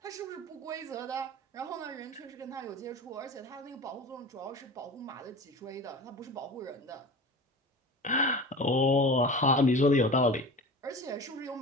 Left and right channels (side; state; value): both; normal; correlation 0.35